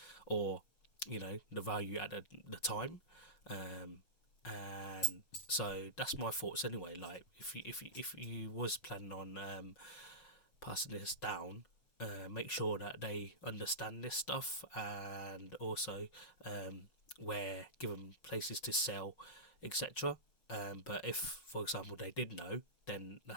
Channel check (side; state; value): right; late; 5.4 ms